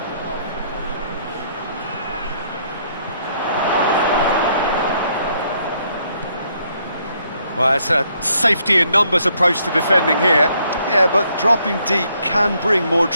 Well, it's a safety in numbers approach to defending here. Yeah, but dropping deep can bring more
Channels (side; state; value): both; inverted; correlation -0.70